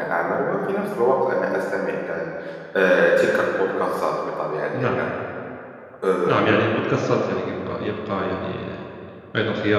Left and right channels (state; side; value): identical; both; correlation 1.00